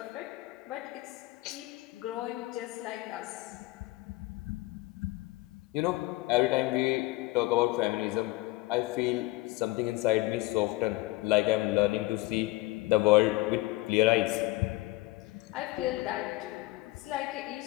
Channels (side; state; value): right; quieter; 20.0 dB